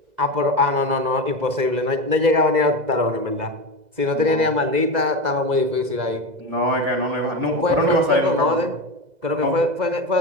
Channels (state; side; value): late; left; 2.0 ms